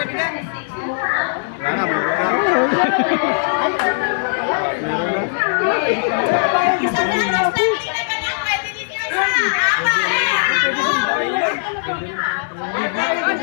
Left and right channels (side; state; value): right; silent; digital silence